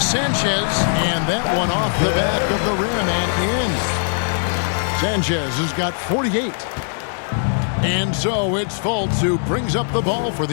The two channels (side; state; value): right; silent; digital silence